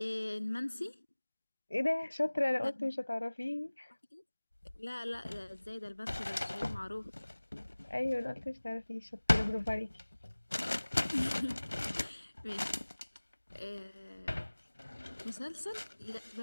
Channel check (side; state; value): both; inverted; correlation -1.00